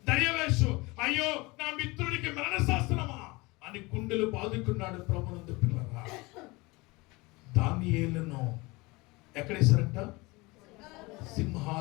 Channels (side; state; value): right; quieter; 23.9 dB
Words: దర్యావేషు. అయ్యో నా మిత్రుడికి మరణశాసనమా అని గుండెలు బాదుకున్నాడు. ప్రభునందు పిల్లరా, దానియేలును ఎక్కడేశారంట?